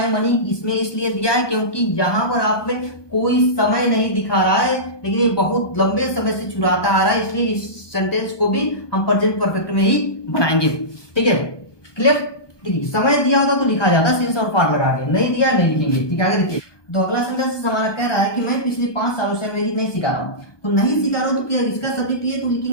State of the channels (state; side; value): late; right; 1.2 ms